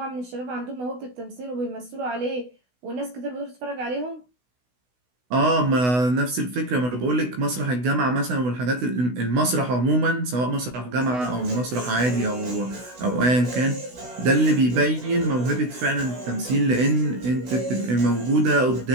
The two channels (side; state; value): left; late; 16 ms